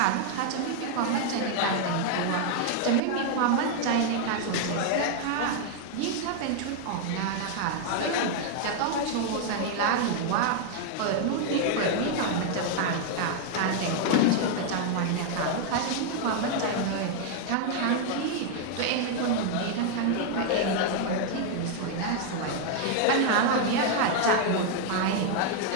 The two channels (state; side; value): different; both; correlation 0.00